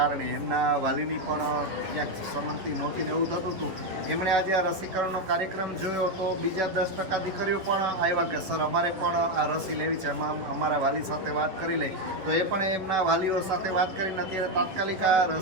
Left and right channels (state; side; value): late; left; 11 ms